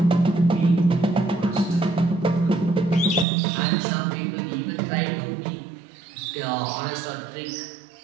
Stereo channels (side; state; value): left; drops out; at 3.2 s